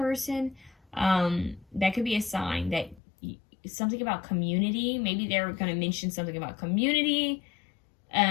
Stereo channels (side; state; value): right; drops out; at 3.0 s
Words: That could be a sign that something about community. Maybe they're going to mention something about community.